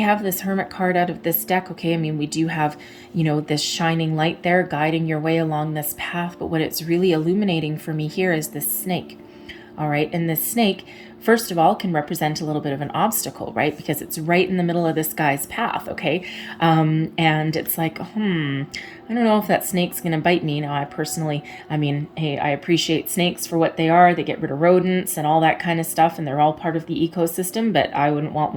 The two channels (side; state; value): both; identical; correlation 1.00